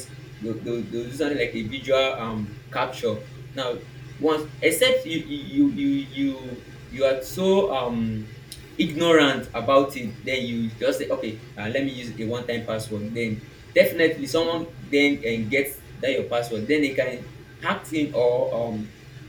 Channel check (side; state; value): both; identical; correlation 1.00